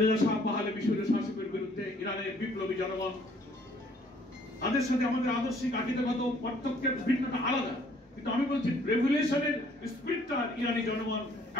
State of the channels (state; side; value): normal; both; correlation 0.61